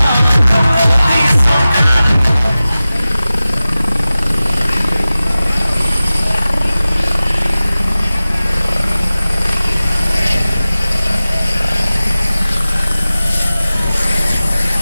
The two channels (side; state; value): both; inverted; correlation -0.96